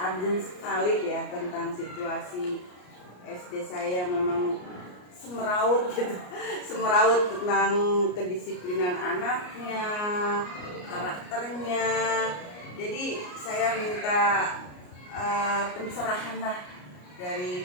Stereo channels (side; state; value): right; late; 33 ms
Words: sekali ya tentang situasi SD saya, memang semeraut gitu. Semeraut tentang kedisiplinan anaknya, karakternya. Jadi saya minta pencerahan lah